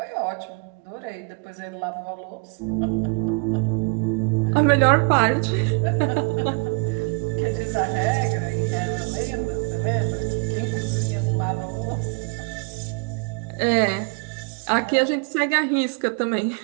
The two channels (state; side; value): quieter; left; 34.0 dB